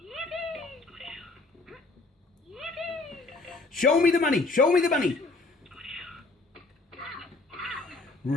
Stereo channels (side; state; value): right; quieter; 3.4 dB